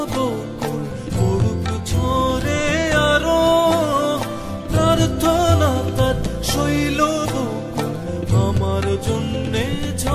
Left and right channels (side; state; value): both; identical; correlation 1.00